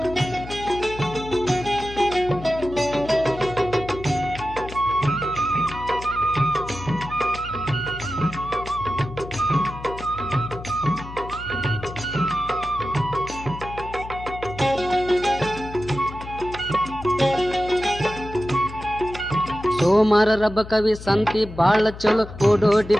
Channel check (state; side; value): noise; left; hum, 13 dB below the sound